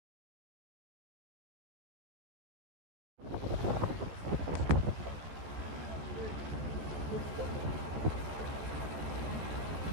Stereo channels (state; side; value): late; left; 14 ms